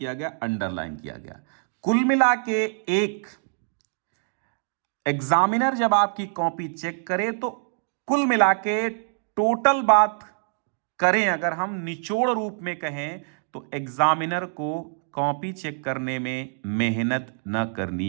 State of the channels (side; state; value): left; silent; digital silence